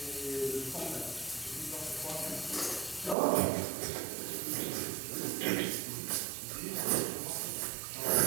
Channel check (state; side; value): drops out; left; at 3.2 s